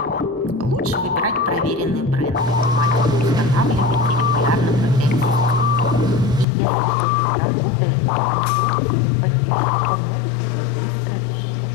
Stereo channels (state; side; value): drops out; right; at 6.5 s